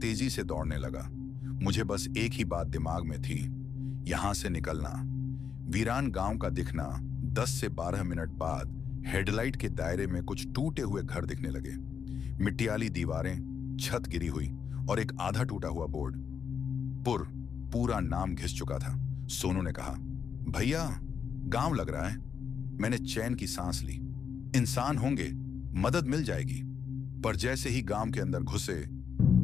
तेजी से दौड़ने लगा। मुझे बस एक ही बात दिमाग में थी, यहां से निकलना। वीरान गांव का दिखना। 10 से 12 मिनट बाद हेडलाइट के दायरे में कुछ टूटे हुए घर दिखने लगे। मिट्टियाली दीवारें, छत गिरी हुई और एक आधा टूटा हुआ बोर्ड। पूरा नाम घिस चुका था। सोनू ने कहा, भैया गांव लग रहा है। मैंने चैन की सांस ली। इंसान होंगे, मदद मिल जाएगी। पर जैसे ही गांव के अंदर घुसे,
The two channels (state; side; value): quieter; right; 6.9 dB